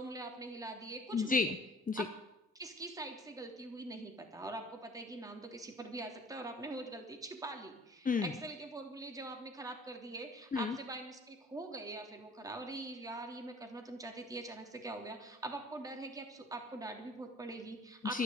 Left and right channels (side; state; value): both; normal; correlation 0.51